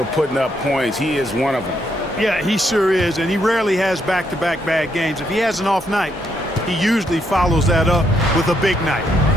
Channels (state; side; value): normal; both; correlation 0.76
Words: putting up points. He is one of them. Yeah, he sure is, and he rarely has back-to-back bad games. If he has an off night, he usually follows that up with a big night.